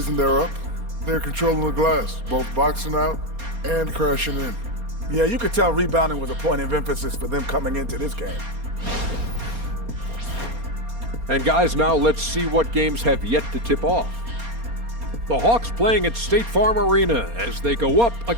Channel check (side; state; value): left; late; 4.3 ms